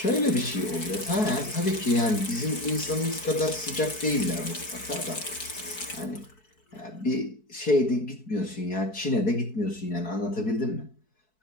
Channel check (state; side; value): late; right; 4.6 ms